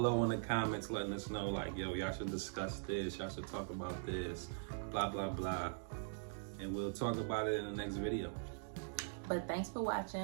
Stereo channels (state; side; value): silent; left; digital silence